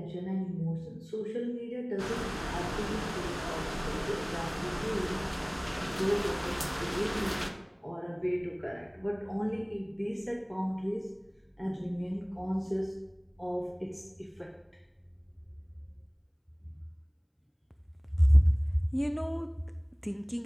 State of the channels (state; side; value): identical; both; correlation 1.00